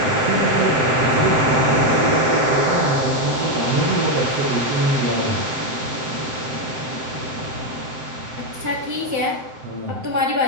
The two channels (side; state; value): left; late; 7.7 ms